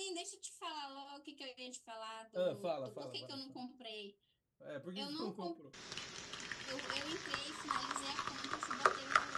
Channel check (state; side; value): identical; both; correlation 1.00